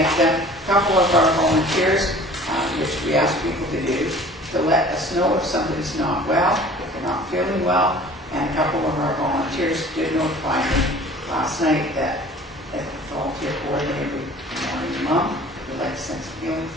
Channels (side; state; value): both; normal; correlation 0.47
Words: them. A couple of our volunteers, which we ask people to do, to let us know if somebody's not well, if they're not feeling well. And a couple of our volunteers did notify me last night that if the volunteer coordinator would morning mom, we'd like to send some healing